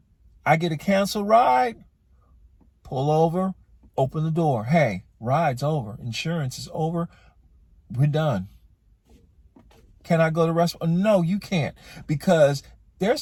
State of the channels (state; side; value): identical; both; correlation 1.00